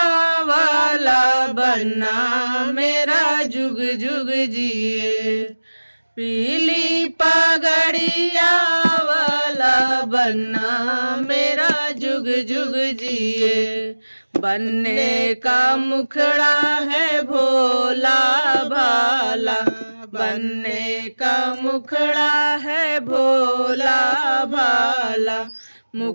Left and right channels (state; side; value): inverted; both; correlation -1.00